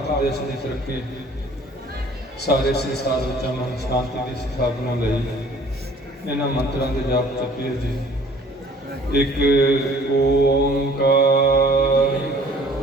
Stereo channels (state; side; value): normal; both; correlation 0.53